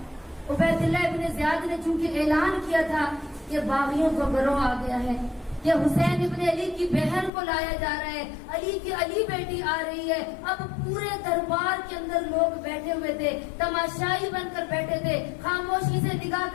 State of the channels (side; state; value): right; drops out; at 7.3 s